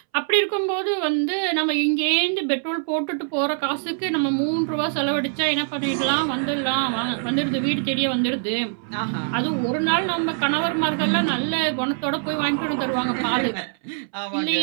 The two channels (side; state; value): left; silent; 63 dB below the other